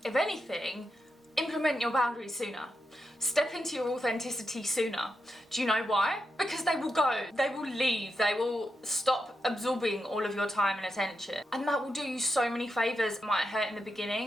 If anything, implement your boundaries sooner. Step into your authenticity sooner. Do you know why? Because they will go, they will leave, they will stop absorbing all of your time and attention. And that will do you so many favours. It might hurt in the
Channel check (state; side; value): normal; both; correlation 0.86